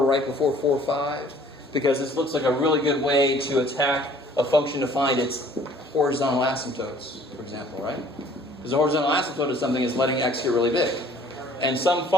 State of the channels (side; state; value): both; normal; correlation 0.55